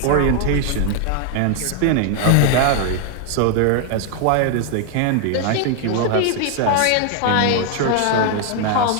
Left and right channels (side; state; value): both; different; correlation 0.00